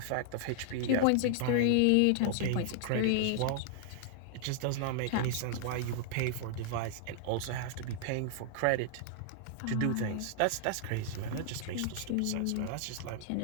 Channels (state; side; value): different; both; correlation -0.01